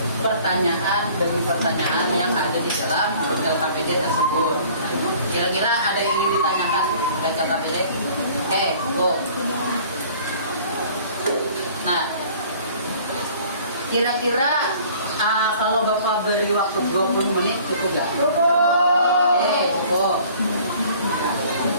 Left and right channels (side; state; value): both; inverted; correlation -0.51